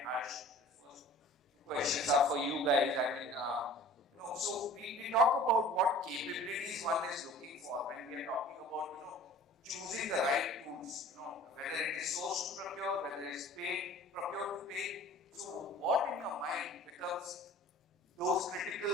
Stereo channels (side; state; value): both; normal; correlation 0.46